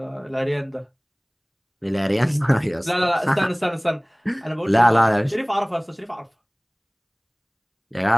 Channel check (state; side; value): identical; both; correlation 1.00